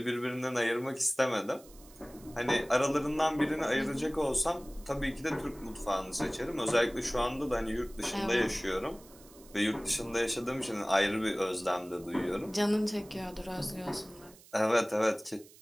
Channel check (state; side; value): noise; right; hiss, 23 dB below the sound